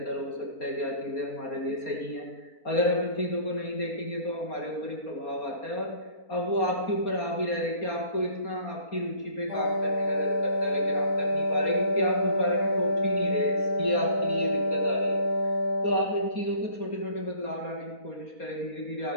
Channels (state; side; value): late; right; 4.3 ms